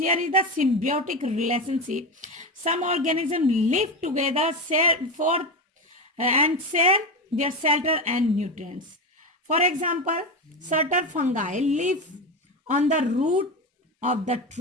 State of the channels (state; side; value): normal; both; correlation 0.18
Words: is the symbiotic relationship. Some organisms live together for and share their shelter and nutrients. For example, certain fungi live on the root of the